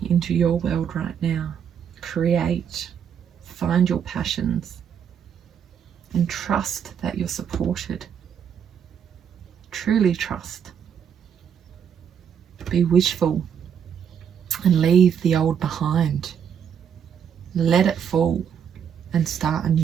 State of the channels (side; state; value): left; quieter; 8.0 dB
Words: into your world right now. Create, find your passions, and trust that you're supported. Truly trust. Be wishful and leave the old behind. Let it fall and start